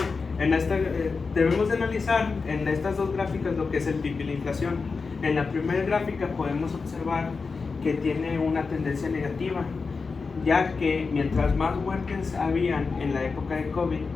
Debemos de analizar en estas dos gráficas lo que es el PIB y la inflación. En la primera gráfica podemos observar que tiene una tendencia negativa, ya que mientras más muertes habían en la época de COVID,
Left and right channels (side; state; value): right; quieter; 4.6 dB